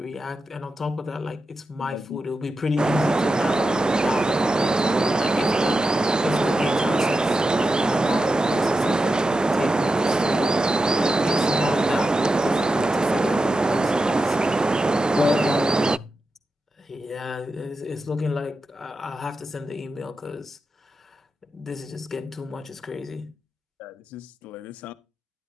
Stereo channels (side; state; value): both; normal; correlation 0.90